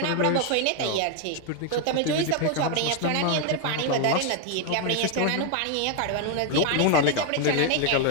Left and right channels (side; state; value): both; different; correlation 0.01